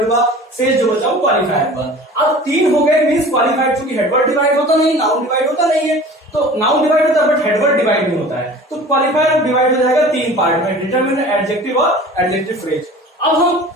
हुआ, शेष जो बचा वो क्वालिफायर हुआ। अब तीन हो गए, मींस क्वालिफायर, चूंकि हेडवर्ड डिवाइड होता नहीं, नाउन डिवाइड होता नहीं है, तो नाउन डिवाइड होता है बट हेडवर्ड डिवाइड नहीं होता है, तो क्वालिफायर डिवाइड हो जाएगा तीन पार्ट में, डिटरमिनर, एडजेक्टिव और एडजेक्टिव फ्रेज। अब हम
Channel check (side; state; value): both; normal; correlation 0.42